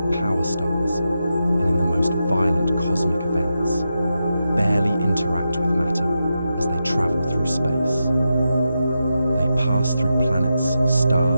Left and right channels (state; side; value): inverted; both; correlation -0.88